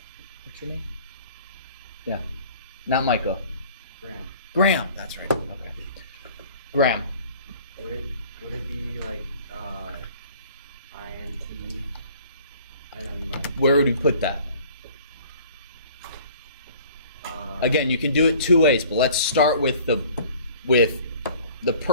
your name? Yeah. Not Michael. Graham, that's right. Okay. Graham. Would it be like int and then like where would we put that? Again, you can do it two ways, but let's start with the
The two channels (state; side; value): inverted; both; correlation -0.50